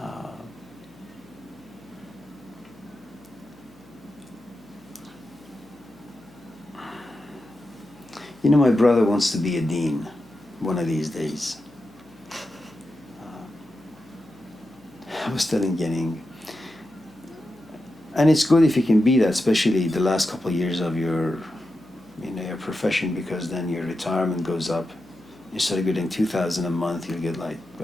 You know, my brother wants to be a dean one of these days. I was telling Genning, and it's good if you can be that, especially the last couple of years of your, you know, your profession, because then your retirement goes up. Instead of getting $2,000 a month, you'll get like, I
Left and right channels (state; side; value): noise; left; hum, 27 dB below the sound